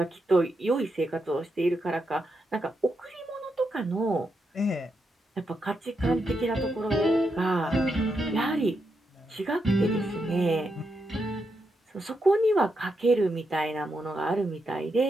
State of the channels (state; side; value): normal; both; correlation 0.83